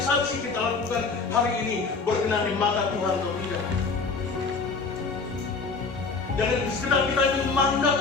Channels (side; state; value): right; quieter; 4.4 dB